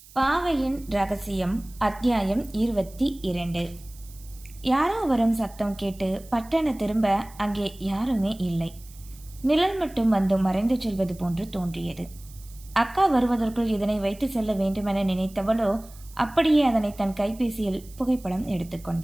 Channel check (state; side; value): noise; right; hiss, 22 dB below the sound